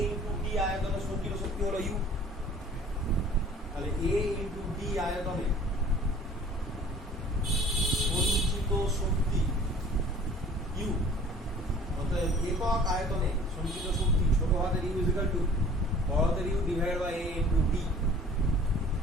ইন্টু ডি আয়তনের সঞ্চিত শক্তি হলো ইউ। তাহলে a ইন্টু ডি আয়তনে সঞ্চিত শক্তি ইউ, অর্থাৎ একক আয়তনে সঞ্চিত শক্তি ছোট হাতের ইউ ইজ ইকুয়াল টু বড় হাতের U divided by a into D.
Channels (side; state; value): both; normal; correlation 0.49